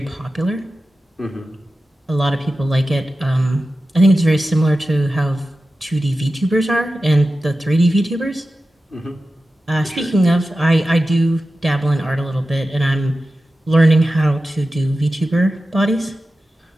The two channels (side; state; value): both; normal; correlation 0.94